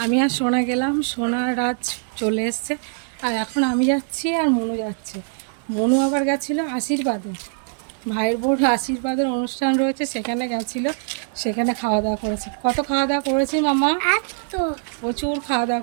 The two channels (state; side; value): silent; left; digital silence